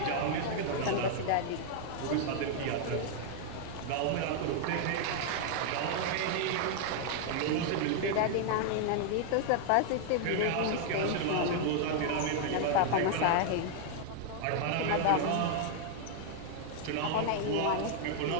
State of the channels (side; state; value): both; different; correlation 0.00